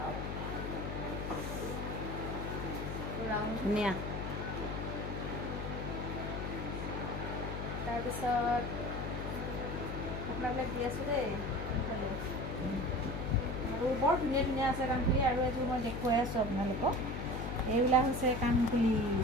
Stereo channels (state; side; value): noise; left; hum, 4 dB below the sound